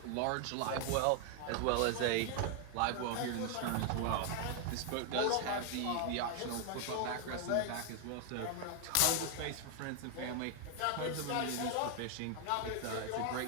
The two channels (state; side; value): different; both; correlation 0.00